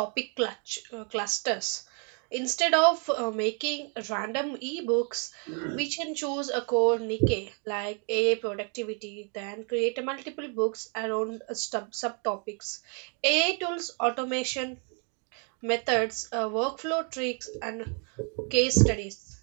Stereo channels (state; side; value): quieter; left; 38.7 dB